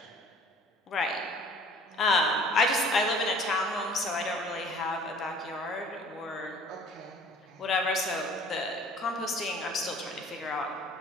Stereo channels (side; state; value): both; normal; correlation 0.51